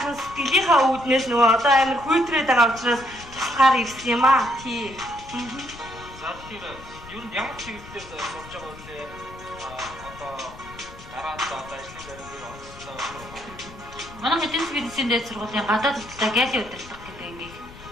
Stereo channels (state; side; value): noise; left; rumble, 17 dB below the sound